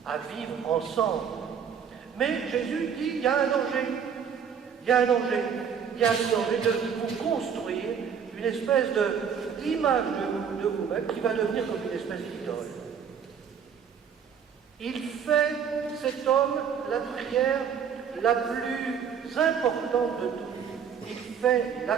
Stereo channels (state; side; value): quieter; left; 7.4 dB